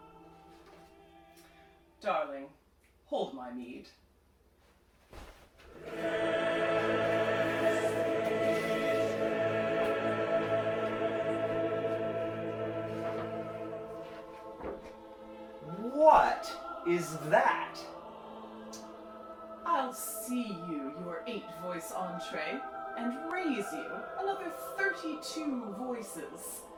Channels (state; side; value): identical; both; correlation 1.00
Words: Darling, hold my mead. What is that? I'll see you your 8-voice entree and raise you another 32 voices